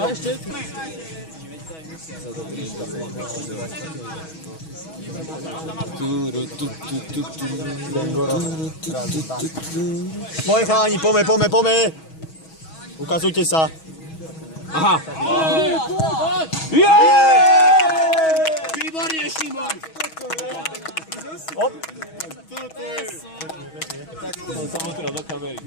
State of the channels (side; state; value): right; late; 6.2 ms